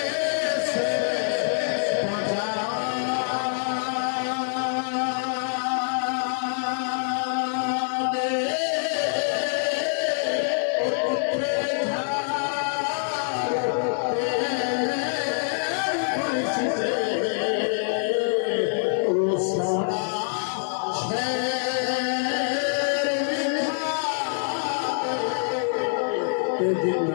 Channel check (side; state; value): right; silent; digital silence